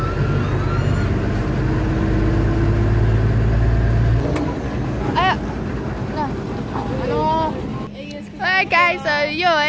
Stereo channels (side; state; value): both; identical; correlation 1.00